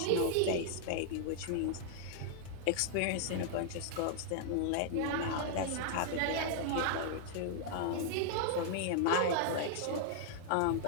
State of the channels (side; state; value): both; different; correlation -0.01